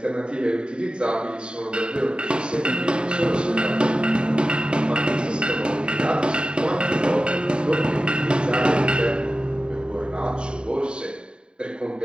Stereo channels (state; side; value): late; left; 0.051 ms